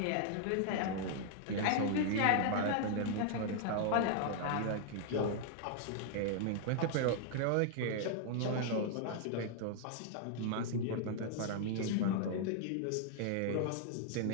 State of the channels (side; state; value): both; different; correlation 0.00